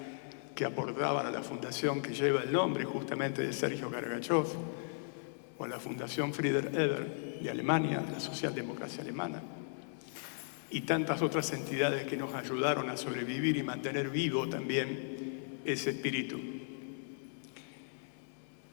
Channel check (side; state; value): right; silent; digital silence